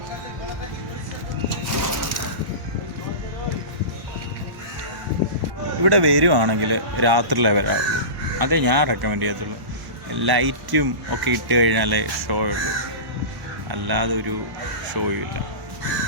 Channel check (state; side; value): late; left; 1.1 ms